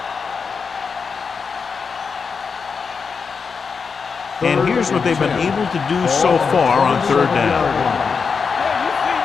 And here's what they've been able to do so far on 3rd down.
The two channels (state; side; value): quieter; right; 5.5 dB